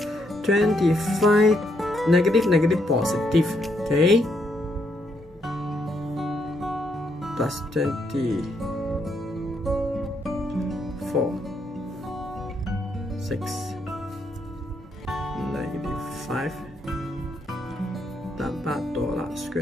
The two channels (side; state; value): both; normal; correlation 0.76